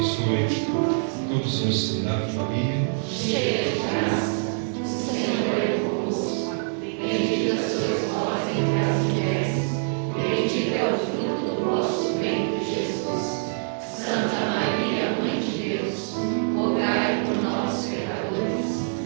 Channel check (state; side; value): silent; left; digital silence